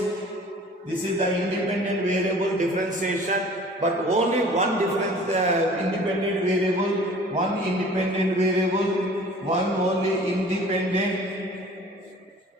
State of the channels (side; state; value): both; normal; correlation 0.47